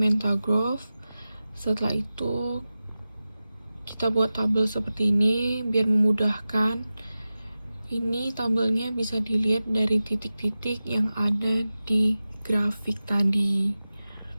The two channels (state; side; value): inverted; both; correlation -0.95